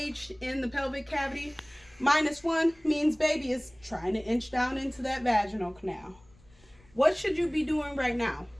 in the pelvic cavity. -1 means baby is trying to inch down into that vaginal canal. What should you be doing right now?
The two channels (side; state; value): left; noise; rumble, 28 dB below the sound